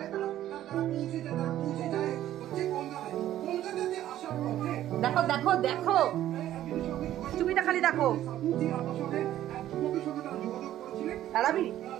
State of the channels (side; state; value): left; quieter; 12.7 dB